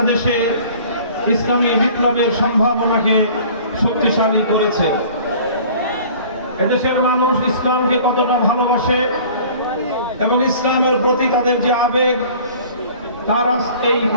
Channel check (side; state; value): both; inverted; correlation -0.48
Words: ইসলামী বিপ্লবের সম্ভাবনাকে শক্তিশালী করেছে। এদেশের মানুষ ইসলামকে কতটা ভালোবাসে এবং ইসলামের প্রতি তাদের যে আবেগ, তার এই